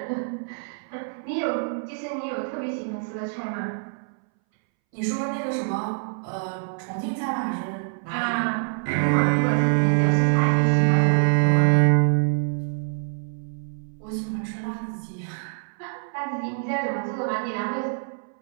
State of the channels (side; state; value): left; silent; 61 dB below the other